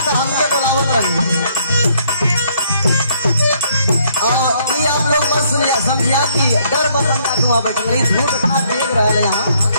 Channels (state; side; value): inverted; both; correlation -0.68